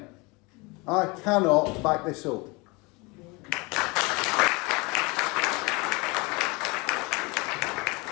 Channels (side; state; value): right; quieter; 26.8 dB